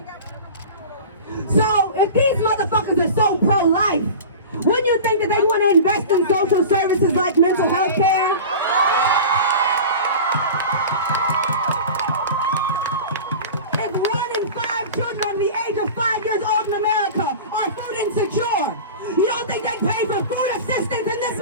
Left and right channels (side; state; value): both; inverted; correlation -0.34